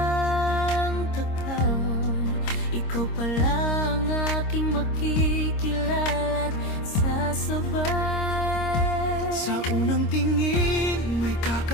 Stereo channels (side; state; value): right; late; 26 ms